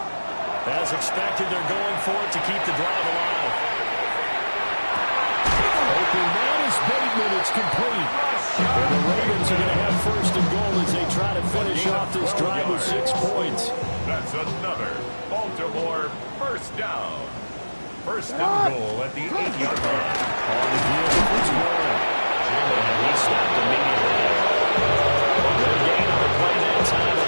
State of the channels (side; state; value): both; inverted; correlation -1.00